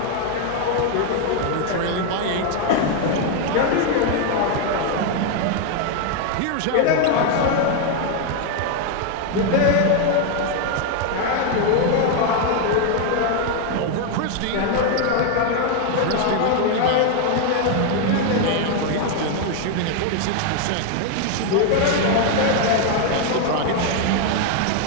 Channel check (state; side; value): different; both; correlation 0.01